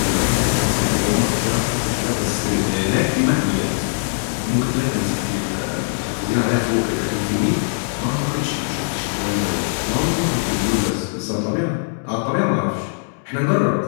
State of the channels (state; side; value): silent; right; digital silence